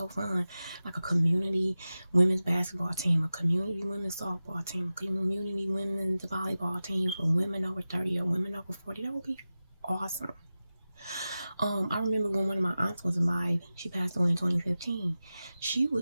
fun. Like a community women's basketball team, a community women's softball team, a community women's volleyball team for women over 30 or women over 40. That would be awesome. I remember when one of my aunts was alive, she passed away in 2015.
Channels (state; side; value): inverted; both; correlation -0.95